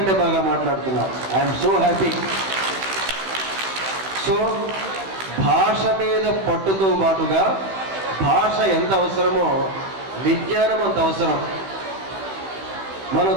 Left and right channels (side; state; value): left; late; 16 ms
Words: బాగా మాట్లాడుతున్నారు. I'm so happy. సో భాష మీద పట్టుతో పాటుగా భాష ఎంత అవసరమో విజ్ఞానం అంత అవసరం. మన